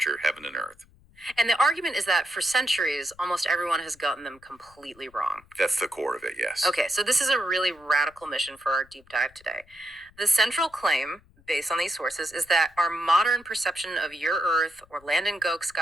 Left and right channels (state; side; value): noise; left; rumble, 29 dB below the sound